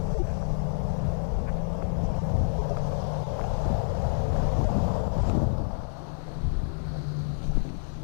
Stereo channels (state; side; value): silent; right; digital silence